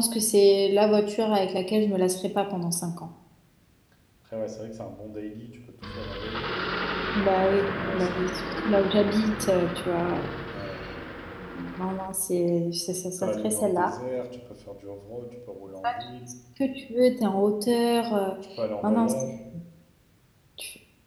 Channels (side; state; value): both; identical; correlation 1.00